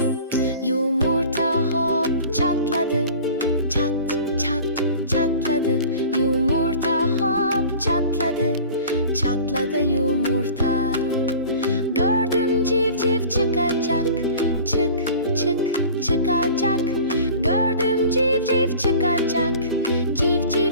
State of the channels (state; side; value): inverted; both; correlation -0.42